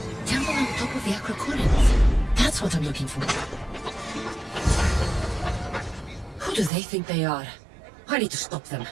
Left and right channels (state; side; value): drops out; left; at 6.7 s